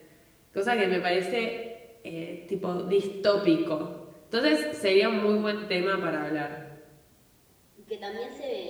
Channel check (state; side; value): identical; both; correlation 1.00